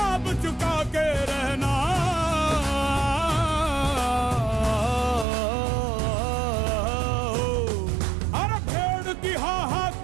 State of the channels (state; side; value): drops out; left; at 5.2 s